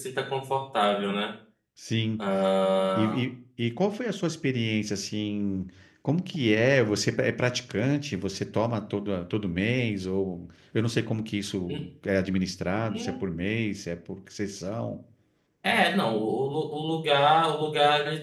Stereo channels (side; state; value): both; identical; correlation 1.00